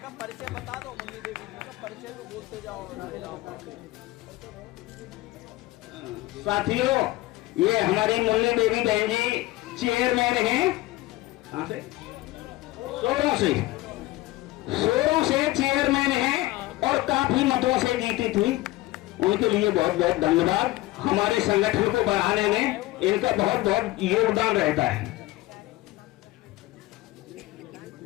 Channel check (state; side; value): quieter; right; 18.4 dB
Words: परिचय बता दो मुन्नी देवी जी का परिचय तो बोलते जाओ। साथियों, ये हमारी मुन्नी देवी बहन जी चेयरमैन हैं। कहां से? सोरों से चेयरमैन हैं और काफी मतों से जीती थी। उनके लिए बहुत बहुत धन्यवाद। हमारे संगठन को बढ़ाने में इनका बहुत बहुत योगदान रहता है।